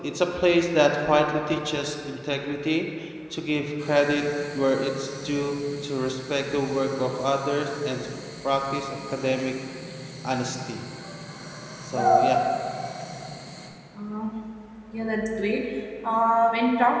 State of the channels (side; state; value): both; identical; correlation 1.00